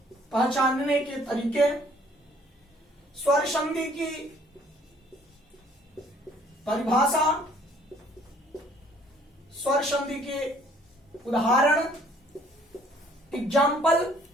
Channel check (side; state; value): both; normal; correlation 0.59